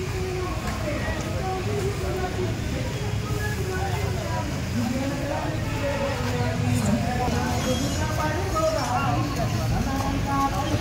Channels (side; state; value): both; identical; correlation 1.00